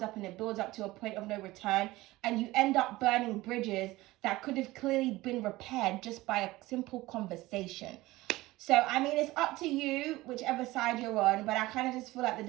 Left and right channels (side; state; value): left; quieter; 18.8 dB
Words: up and it builds up to a point of no return. And you end up burning bridges that could have clearly been repaired just by a simple conversation. So, I mean, it's up to you, whichever side you're on, but I kind of just feel like the